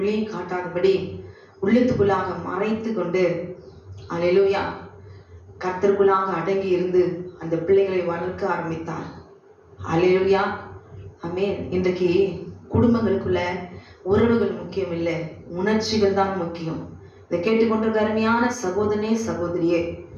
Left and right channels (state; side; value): identical; both; correlation 1.00